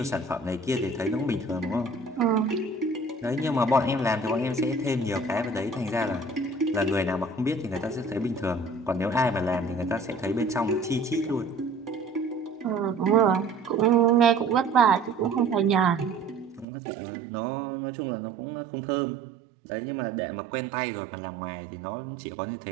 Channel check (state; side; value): drops out; left; at 16.7 s